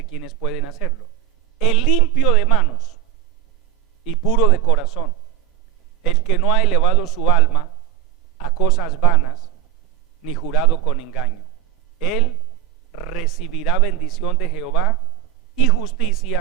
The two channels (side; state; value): left; quieter; 11.3 dB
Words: quiénes pueden hacerlo: el limpio de manos y puro de corazón, el que no ha elevado su alma a cosas vanas, ni jurado con engaño. Él recibirá bendición de Jehová y